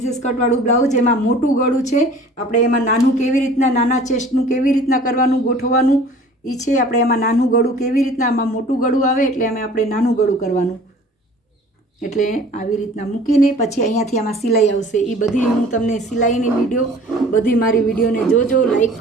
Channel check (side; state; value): both; normal; correlation 0.48